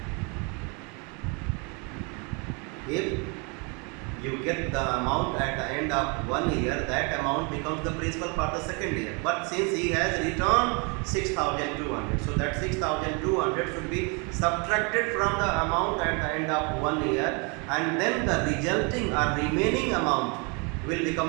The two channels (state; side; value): quieter; left; 32.6 dB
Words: If you get the amount at the end of 1 year, that amount becomes the principal for the second year. But since he has returned 6,200, so that 6,200 should be subtracted from the amount at the end of 1 year, and then the resulting or remaining amount will